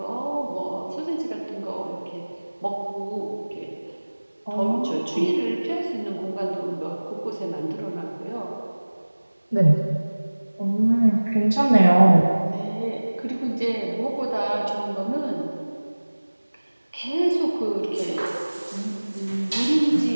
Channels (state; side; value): inverted; both; correlation -1.00